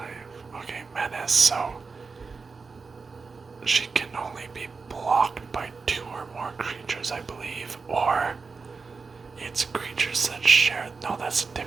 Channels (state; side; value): quieter; left; 4.6 dB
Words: Okay, Menace, so she can only be blocked by 2 or more creatures, I believe, or it's creatures that share. No, that's